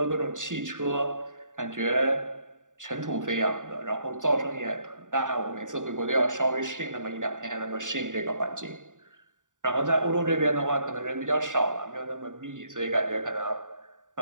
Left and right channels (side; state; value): left; late; 0.87 ms